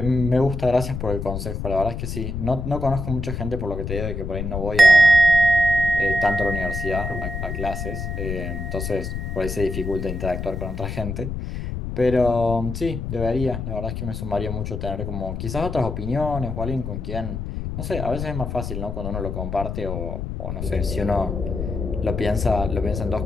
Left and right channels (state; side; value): noise; left; rumble, 5 dB below the sound